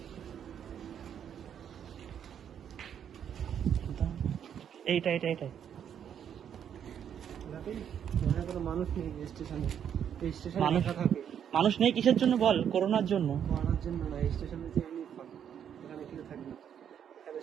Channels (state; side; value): quieter; left; 8.8 dB